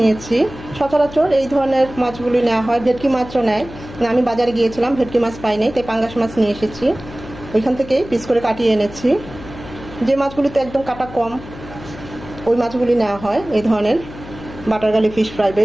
সচরাচর এই ধরনের মাছগুলি নেওয়া হয়, ভেটকি মাছও নেয়। আমি বাজারে গিয়েছিলাম, ভেটকি মাছ পাইনি, তাই পাঙ্গাস মাছ নিয়ে এসেছি। ওইখান থেকে পিস করে কাটিয়ে এনেছি। যে মাছগুলিতে একদম কাটা কম ওই মাছগুলি নেওয়া হয় এই ধরনের বাটার গার্লিক ফিশ ফ্রাই বা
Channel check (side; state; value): left; noise; hum, 15 dB below the sound